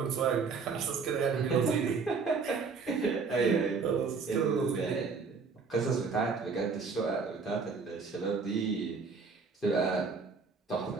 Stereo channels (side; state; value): left; quieter; 4.9 dB